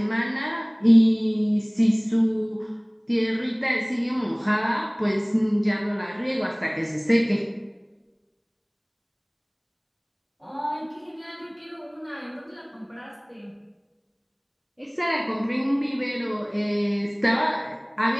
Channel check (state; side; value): identical; both; correlation 1.00